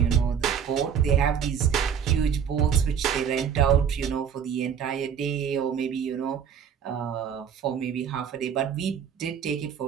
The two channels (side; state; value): left; quieter; 7.8 dB